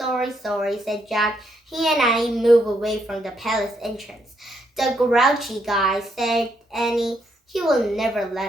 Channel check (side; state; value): both; normal; correlation 0.75